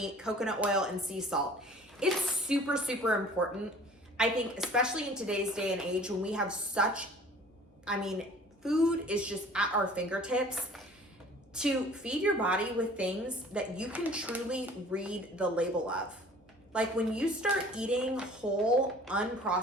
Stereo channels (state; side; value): normal; both; correlation 0.49